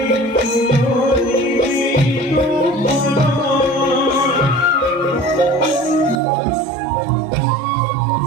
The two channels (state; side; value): drops out; left; at 6.2 s